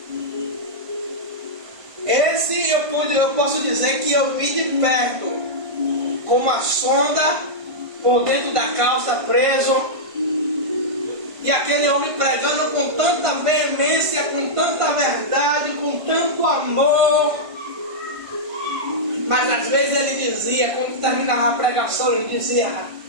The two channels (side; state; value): left; late; 1.5 ms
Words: Esse eu posso dizer que eu vi de perto, com uma sonda por dentro da calça preso, e aquele homem pregando com tanta veemência, com tanta verdade, com tanto amor. Mas às vezes ele dizia, quando terminava a pregação, ele dizia,